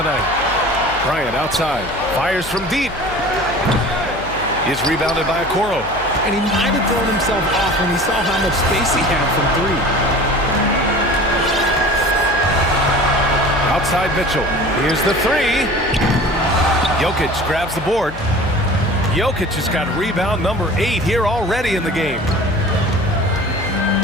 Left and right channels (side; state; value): left; noise; hum, 14 dB below the sound